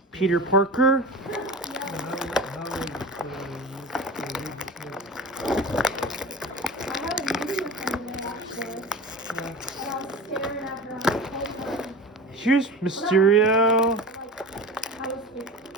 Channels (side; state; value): both; normal; correlation 0.33